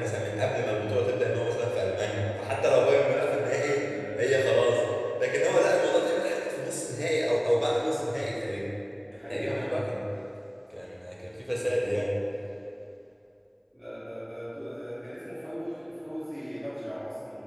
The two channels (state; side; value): identical; both; correlation 1.00